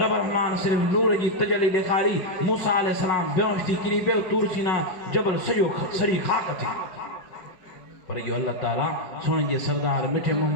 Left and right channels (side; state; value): right; late; 5.4 ms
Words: رحمان صرف نور جی تجلی دکھاری موسیٰ علیہ السلام بیونشتی کری بیو تور سینا جبل سجو سری خاک تھی پر یہ اللہ تعالیٰ سونے جے سردار مٹھے